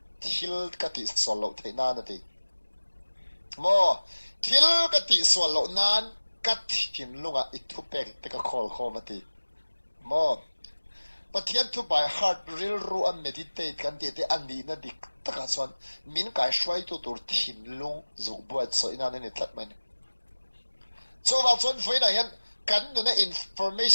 thil ka ti solo theina na ti mo thil ka ti solo nan ka thin lunga I thu pek te ka khol khom ati mo pathian thu by heart real ru a meditate kan ti te ani na dik taka chuan min kai shwai tu tur thinlung zu buat so ina ne tlat mai ne so wa chuan foina hian kan nu na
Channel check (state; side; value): inverted; both; correlation -1.00